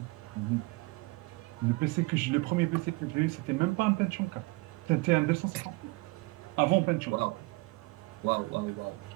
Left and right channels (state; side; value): quieter; left; 25.5 dB